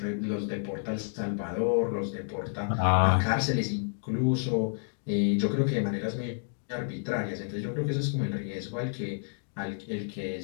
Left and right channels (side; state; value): right; silent; digital silence